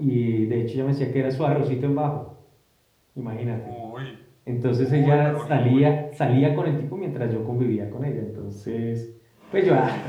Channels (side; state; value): both; identical; correlation 1.00